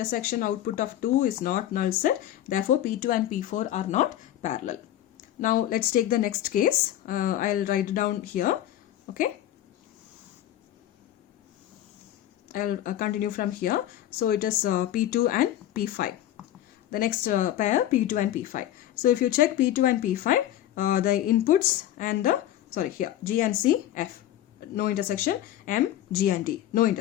output of 2 is not null set. Therefore P2 and P4 are not parallel. Now let's take the next case. I'll write it down here. Okay. I'll continue from here. So it is P2 and P5. The next pair P2 and P5. So if you check P2 and P5, the inputs and the here G and C, F, no intersection, M, G and D, no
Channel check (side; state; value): right; quieter; 12.5 dB